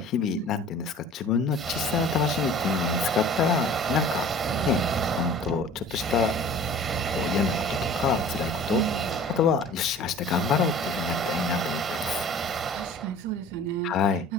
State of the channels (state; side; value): normal; both; correlation 0.45